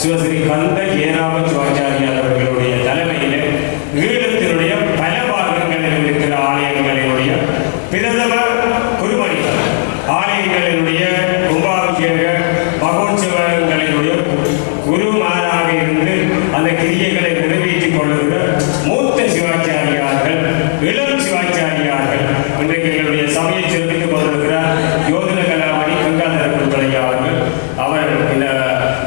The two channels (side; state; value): right; silent; digital silence